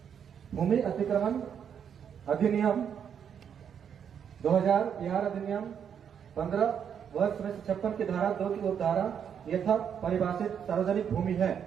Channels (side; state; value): left; quieter; 8.0 dB